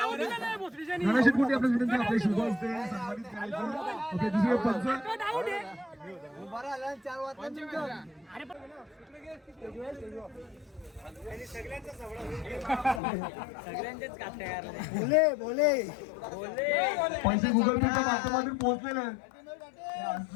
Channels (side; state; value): right; drops out; at 13.0 s